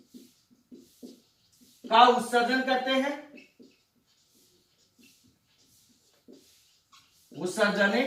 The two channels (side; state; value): both; identical; correlation 1.00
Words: का उत्सर्जन करते हैं, उत्सर्जन